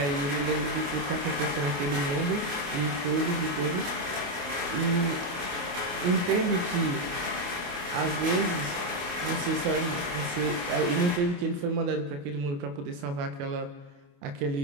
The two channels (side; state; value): left; late; 28 ms